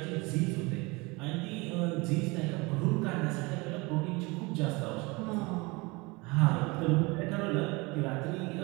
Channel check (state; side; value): quieter; left; 25.5 dB